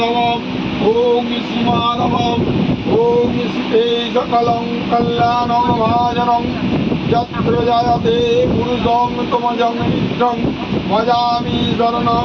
ওম শ্রী মাধবম ওম শ্রীতে সকলং কল্যাণং ভাজনং যত্র জয়তে পুরুষং তমজং মিত্রং ভজামি শরণং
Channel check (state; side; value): identical; both; correlation 1.00